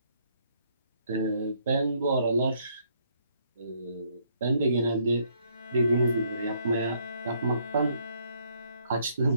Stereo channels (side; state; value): both; inverted; correlation -0.69